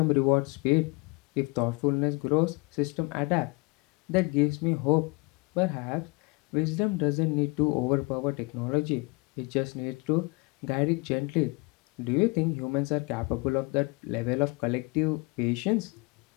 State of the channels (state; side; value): quieter; right; 27.5 dB